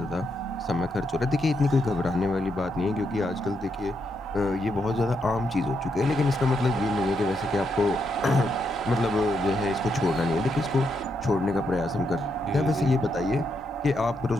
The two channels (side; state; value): both; normal; correlation 0.80